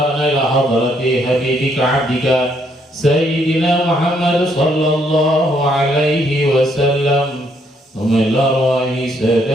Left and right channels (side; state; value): both; normal; correlation 0.71